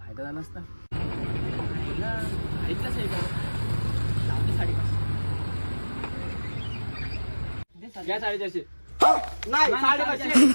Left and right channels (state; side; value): inverted; both; correlation -1.00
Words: झाला असता. आईला ऐकलंच आहे का? लावते 550. घ्या 450. नाही